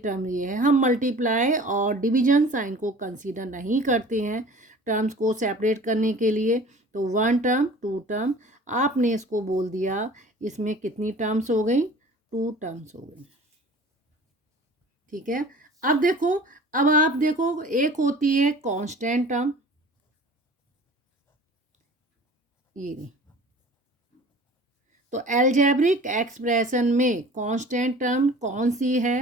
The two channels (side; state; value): both; normal; correlation 0.44